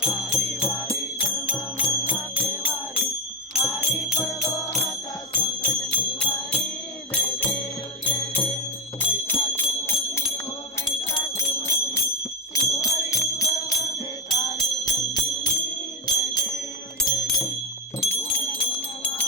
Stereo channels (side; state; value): both; normal; correlation 0.07